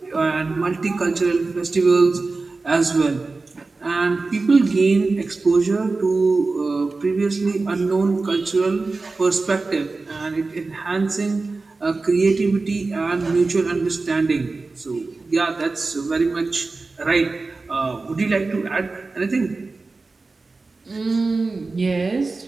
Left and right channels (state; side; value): quieter; left; 3.7 dB